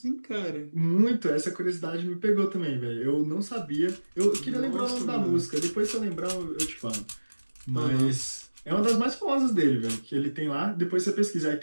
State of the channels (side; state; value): both; inverted; correlation -1.00